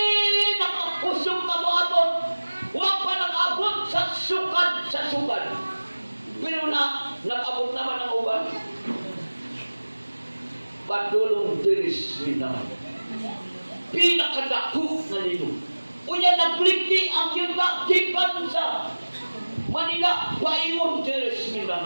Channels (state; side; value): inverted; both; correlation -1.00